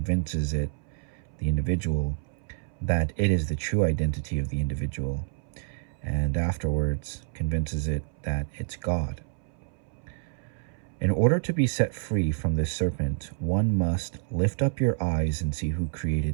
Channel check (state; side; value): silent; left; 59 dB below the other